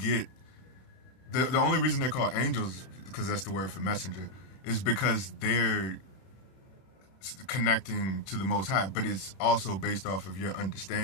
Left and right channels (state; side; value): late; right; 31 ms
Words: The only reason they're called angels, because that's the word for messenger, is because they're connecting to the Most High, but it's also based off of your